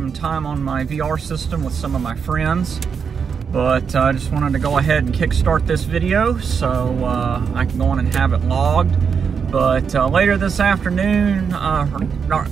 time on my VR system with some of my friends. But I just wanted to go ahead and kickstart this video so I can go on and have it logged. But later this afternoon, not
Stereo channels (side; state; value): left; quieter; 6.4 dB